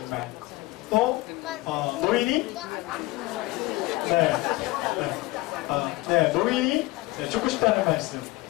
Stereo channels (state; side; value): quieter; right; 20.3 dB